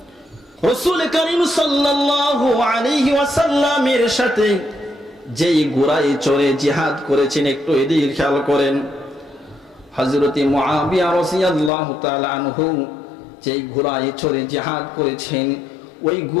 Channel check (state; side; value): drops out; right; at 11.7 s